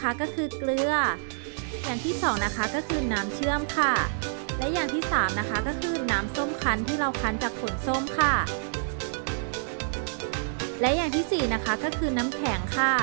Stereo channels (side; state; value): left; silent; digital silence